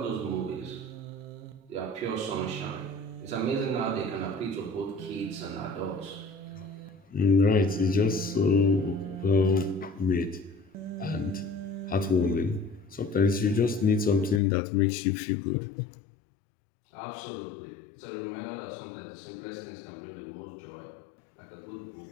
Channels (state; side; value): drops out; right; at 14.4 s